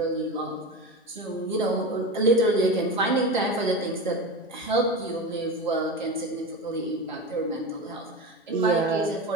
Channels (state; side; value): normal; both; correlation 0.24